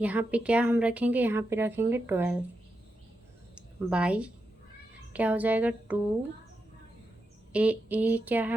यहाँ पे क्या हम रखेंगे, यहाँ पे रखेंगे 12 बाई क्या हो जाएगा 2 a क्या है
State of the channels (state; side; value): normal; both; correlation 0.87